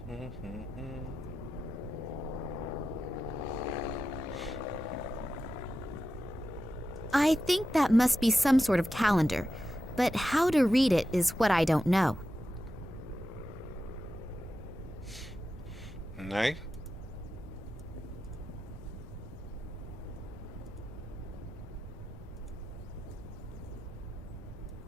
I think that must be some sort of calendar, but how to read it is what I don't know. Nee.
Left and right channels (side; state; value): both; normal; correlation 0.90